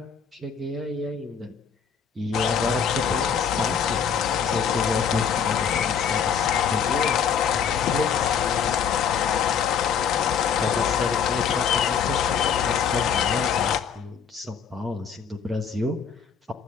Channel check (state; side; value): quieter; right; 7.2 dB